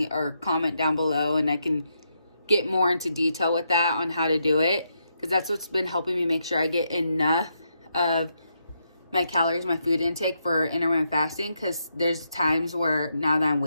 or comment down below, and I can get more into detail with that on how to do it, because that's what's been helping me make sure I get enough of my calories, my food intake for intermittent fasting. Because there's times where now that I'm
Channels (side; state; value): both; inverted; correlation -0.80